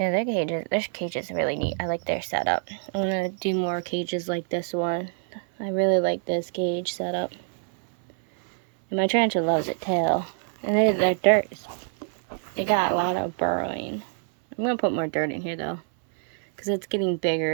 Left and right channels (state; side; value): silent; left; 60 dB below the other